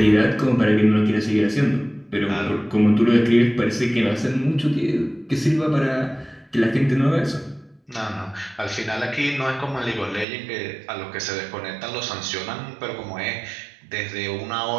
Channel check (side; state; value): left; drops out; at 10.2 s